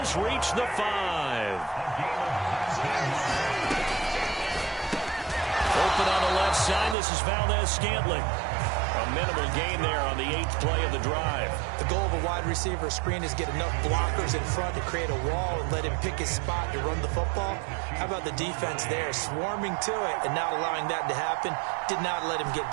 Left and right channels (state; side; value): drops out; left; at 7.0 s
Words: reach the 5. Open on the left side, this is Valdez-Scantling. A minimal gain there on the 8th play of the drive. The goal of a wide receiver screen is get enough blockers in front to create a wall and let him pick his spot to run the football. How about the defense there, swarming to it and not allowing that to happen? Did not let him get